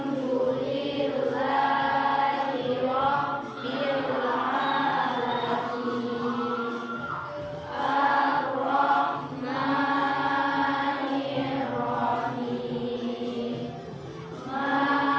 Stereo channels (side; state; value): both; identical; correlation 1.00